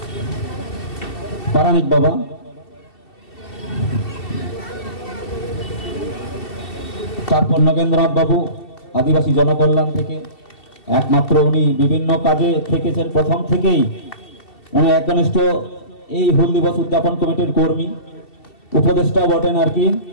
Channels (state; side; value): late; right; 2.7 ms